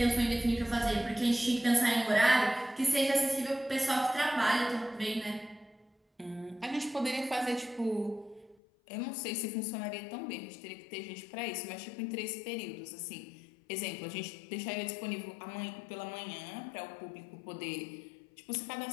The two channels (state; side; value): drops out; right; at 8.6 s